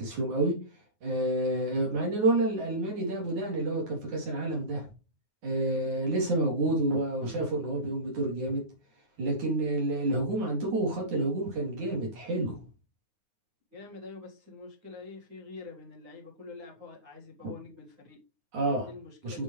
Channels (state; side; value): late; left; 9.5 ms